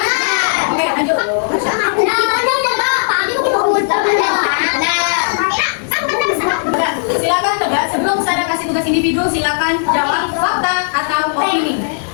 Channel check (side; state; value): right; silent; 69 dB below the other